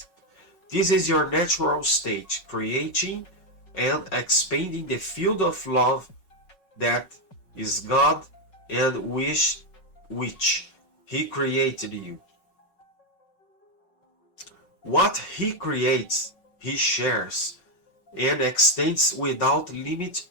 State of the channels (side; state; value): right; late; 5.4 ms